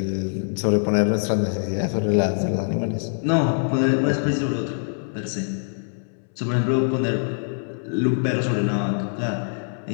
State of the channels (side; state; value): right; silent; 63 dB below the other